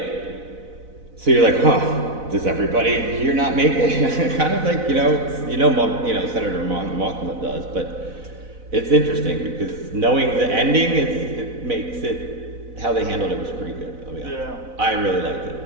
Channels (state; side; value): late; left; 4.0 ms